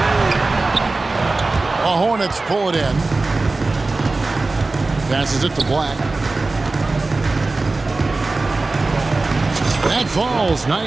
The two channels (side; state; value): left; quieter; 3.4 dB